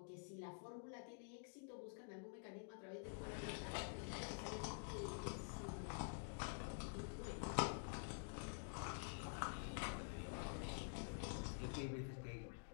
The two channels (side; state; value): right; silent; digital silence